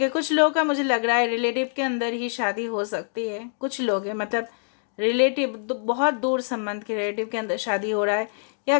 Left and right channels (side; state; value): right; silent; digital silence